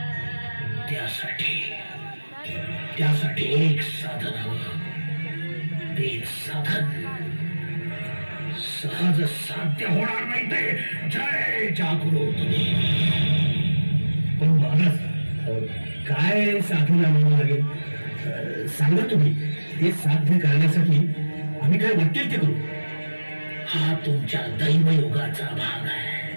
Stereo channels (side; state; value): both; inverted; correlation -1.00